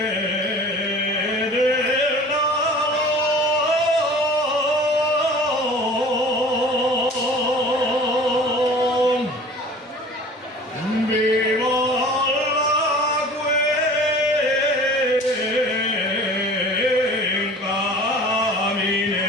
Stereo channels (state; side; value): normal; both; correlation 0.44